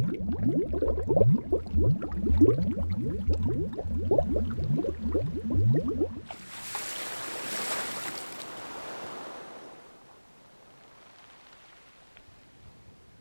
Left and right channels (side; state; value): both; inverted; correlation -1.00